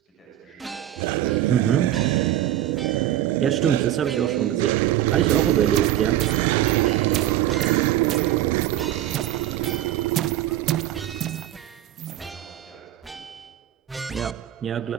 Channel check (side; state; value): left; quieter; 12.9 dB